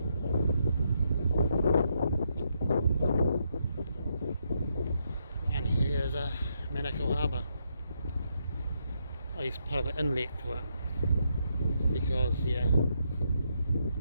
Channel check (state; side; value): inverted; both; correlation -0.78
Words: And here's a Manukau Harbour. It's part of the inlet to it, because yeah, you